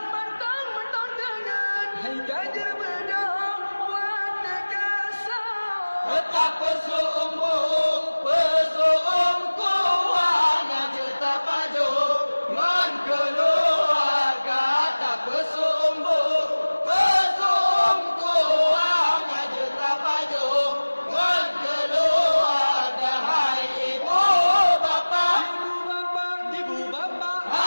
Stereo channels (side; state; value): both; inverted; correlation -1.00